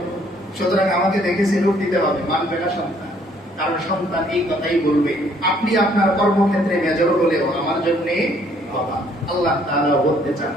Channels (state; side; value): normal; both; correlation 0.64